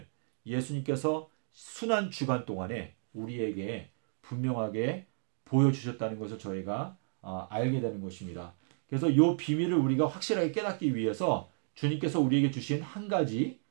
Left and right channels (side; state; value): left; silent; digital silence